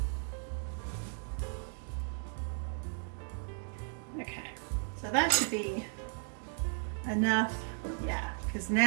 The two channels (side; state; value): left; silent; 54 dB below the other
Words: So that should be enough, yeah, because